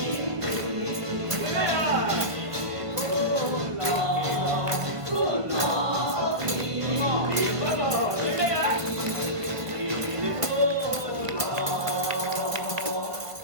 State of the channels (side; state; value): left; late; 1.2 ms